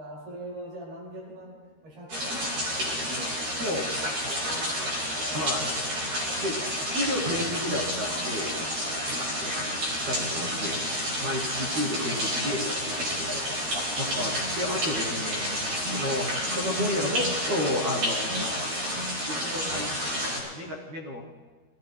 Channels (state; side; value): late; left; 13 ms